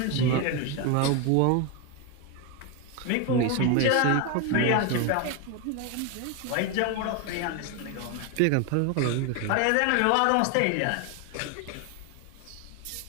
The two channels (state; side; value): different; both; correlation 0.01